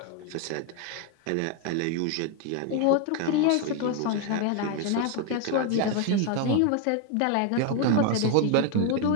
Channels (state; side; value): different; both; correlation 0.01